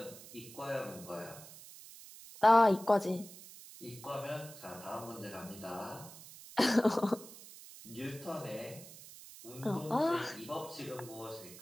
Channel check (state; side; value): noise; right; hiss, 16 dB below the sound